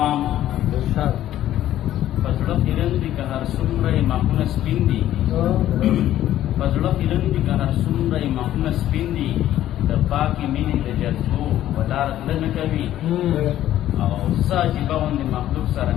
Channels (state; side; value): quieter; right; 12.7 dB